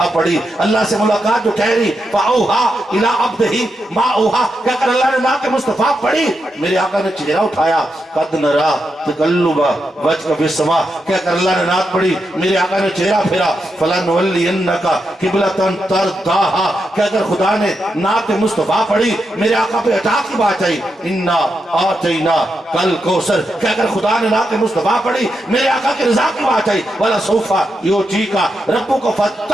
پڑھی۔ اللہ سے ملاقات جو ٹھہری، فاوحیٰ الی عبدہ ما اوحیٰ کہہ کر اللہ نے نعت مصطفیٰ پڑھی۔ میرے آقا نے چہرہ اٹھایا، قد نرا تقلب وجهک فی السماء کہہ کر اللہ نے نعت پڑھی۔ میرے آقا نے چہرہ پھیرا، فلنولینک قبلۃ ترضاھا کہہ کر خدا نے نعت مصطفیٰ پڑھی۔ میرے آقا پہ عطا کی بات آئی، انا اعطیناک الکوثر کہہ کر خدا نے نعت مصطفیٰ پڑھی۔ میرے آقا کی رضا کی بات آئی، ولسوف یعطیک ربک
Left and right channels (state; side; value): normal; both; correlation 0.85